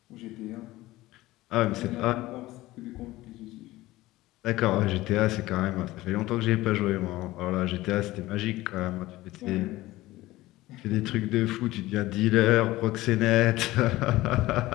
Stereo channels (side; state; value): right; quieter; 17.8 dB